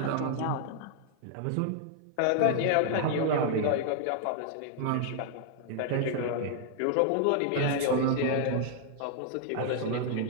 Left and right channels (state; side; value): different; both; correlation -0.01